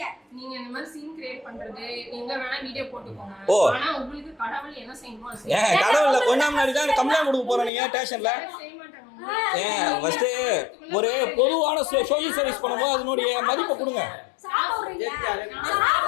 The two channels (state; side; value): drops out; right; at 7.7 s